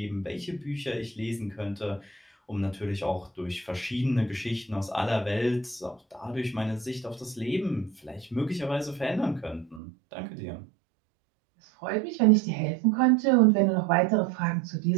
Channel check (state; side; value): drops out; left; at 9.8 s